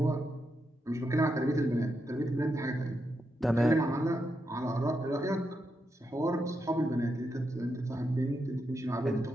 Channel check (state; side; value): normal; both; correlation 0.84